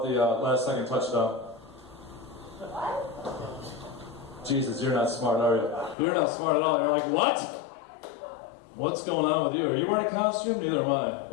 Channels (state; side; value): drops out; right; at 6.0 s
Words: the last second touchdown. Jesus, you're not smart, are you? You're not smart at all. You're like, what? What's going on with you? Are you wearing a costume? Neither am I.